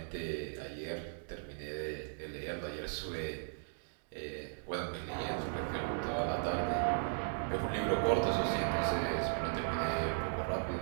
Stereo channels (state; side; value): silent; left; digital silence